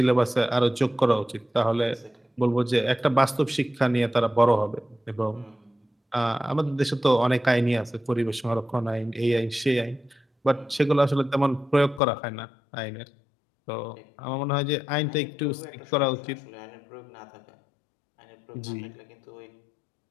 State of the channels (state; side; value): drops out; right; at 12.0 s